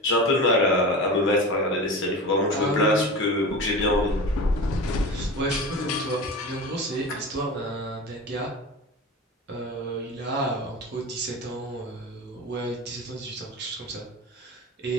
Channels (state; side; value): normal; both; correlation 0.30